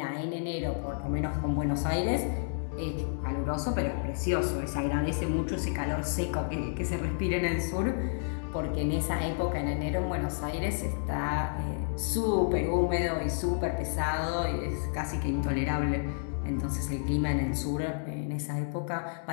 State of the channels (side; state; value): right; silent; digital silence